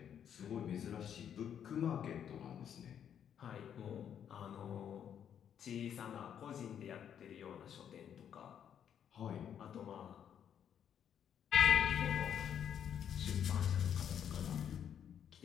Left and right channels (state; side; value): quieter; right; 8.9 dB